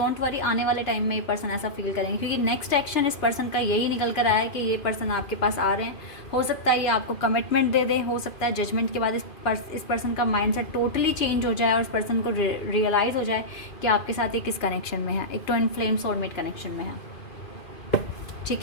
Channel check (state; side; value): late; right; 2.4 ms